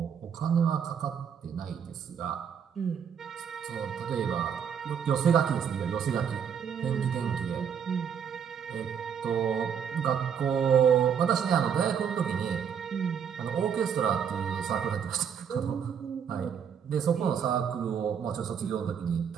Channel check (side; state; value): left; quieter; 7.6 dB